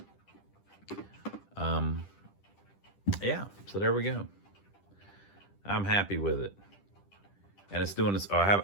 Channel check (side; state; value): right; late; 10 ms